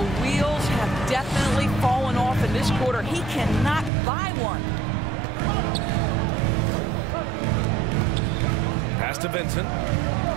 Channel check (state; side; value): drops out; left; at 3.9 s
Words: wheels have definitely fallen off in this quarter. He cannot buy one. Pass to Vincent.